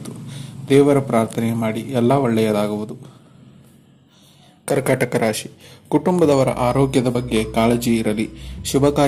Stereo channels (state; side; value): identical; both; correlation 1.00